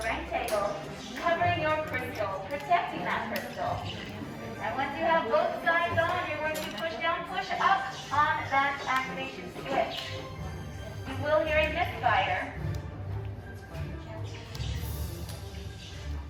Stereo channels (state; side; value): identical; both; correlation 1.00